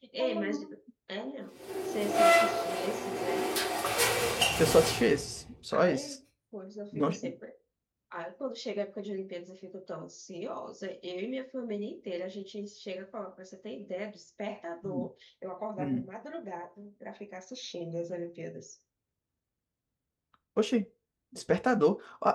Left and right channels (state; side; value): identical; both; correlation 1.00